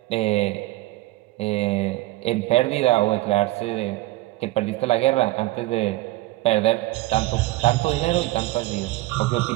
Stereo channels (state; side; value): quieter; left; 18.2 dB